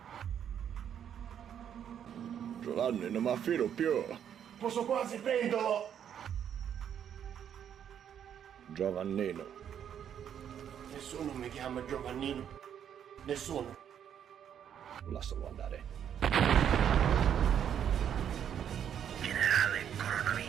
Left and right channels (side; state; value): left; quieter; 9.0 dB